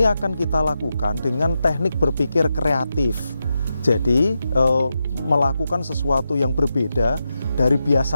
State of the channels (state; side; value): inverted; both; correlation -0.88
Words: akan kita lakukan dengan teknik berpikir kreatif. Jadi, melakukan sesuatu yang berbeda dari